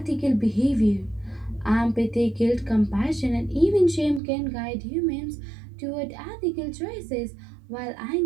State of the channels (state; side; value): drops out; left; at 4.2 s